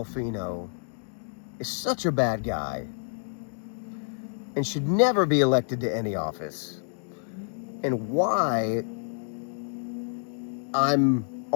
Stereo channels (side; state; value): right; silent; digital silence